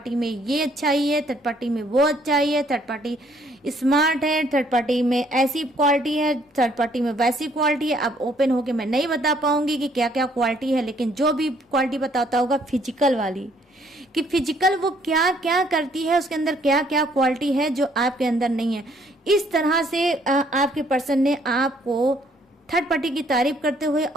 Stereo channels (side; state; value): both; normal; correlation 0.65